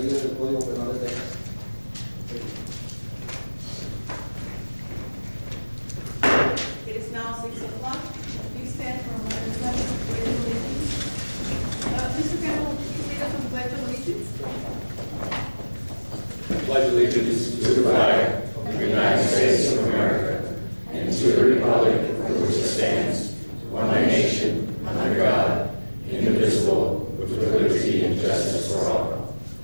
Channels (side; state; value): both; inverted; correlation -1.00